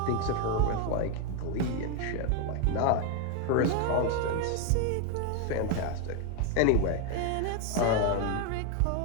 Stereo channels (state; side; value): different; both; correlation 0.01